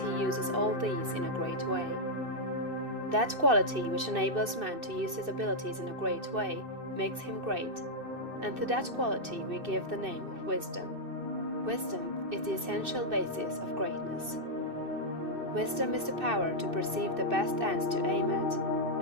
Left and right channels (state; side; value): late; left; 2.6 ms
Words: uses all these in a great way. That quality which enables man to use his abilities in a great way makes him great, and to that quality we give the name of wisdom. Wisdom is the essential basis of greatness. Wisdom is the power to perceive the best ends to aim at,